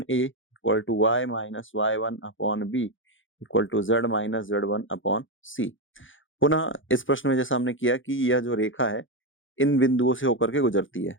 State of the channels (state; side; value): late; right; 0.57 ms